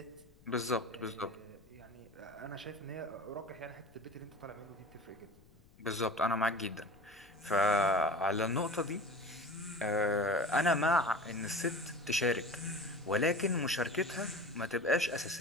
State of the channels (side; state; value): left; noise; rumble, 26 dB below the sound